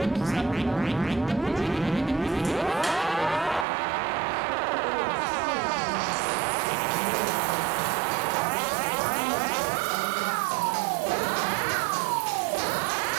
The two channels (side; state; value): left; drops out; at 3.7 s